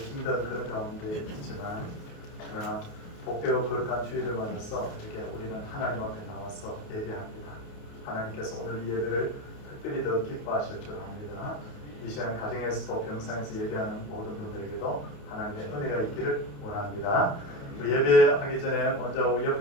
그런 가운데 있지만, 그러나 복되고 거룩한 주일을 맞아서 이렇게 우리는 하나님 앞에 나와서 예배합니다. 하나님께서 오늘 이 예배를 특별히 더 기뻐하실 줄 압니다. 이 시간 가정에서도 병상에서 예배하는 모든 분들에게도 하나님의 은혜가 있기를 원합니다. 우리 예배하기 전에 먼저 우리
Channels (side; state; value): right; late; 28 ms